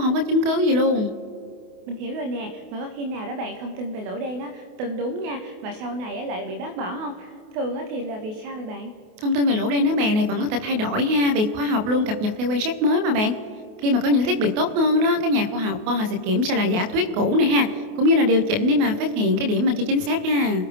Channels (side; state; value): left; late; 28 ms